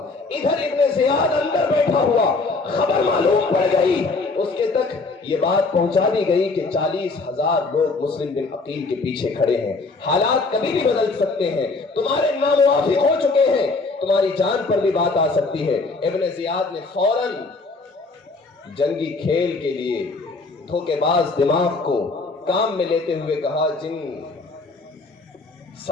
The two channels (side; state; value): right; quieter; 3.7 dB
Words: ادھر ابن زیاد اندر بیٹھا ہوا، خبر معلوم پڑ گئی، اس کے تک یہ بات پہنچا دی گئی کہ 40,000 لوگ مسلم بن عقیل کے پیچھے کھڑے ہیں، حالات کبھی بھی بدل سکتے ہیں، تمہارے ناموافق ہو چکے ہیں، تمہاری جان پر بھی بات آ سکتی ہے۔ ابن زیاد نے فوراً جنگی کھیل کے لیے دھوکے باز دماغ کو کام میں لیتے ہوئے کہا، جن